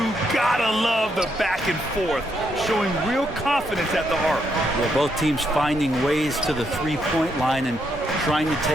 gotta love the back and forth, showing real confidence at the arc. Well, both teams finding ways to the three-point line and trying to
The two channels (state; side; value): normal; both; correlation 0.78